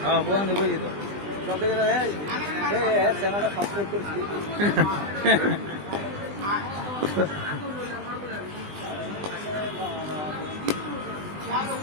হ্যাঁ বোন বুঝি তো। সব থেকে চ্যানেলটা সাবস্ক্রাইব করছি।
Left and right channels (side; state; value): left; late; 20 ms